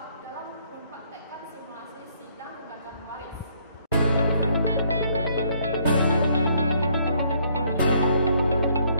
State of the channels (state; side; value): inverted; both; correlation -0.67